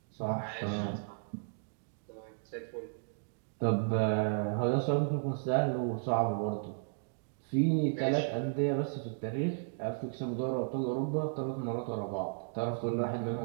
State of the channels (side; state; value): left; silent; digital silence